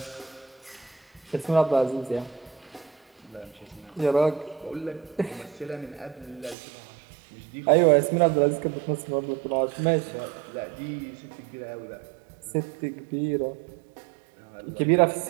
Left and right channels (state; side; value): drops out; left; at 6.6 s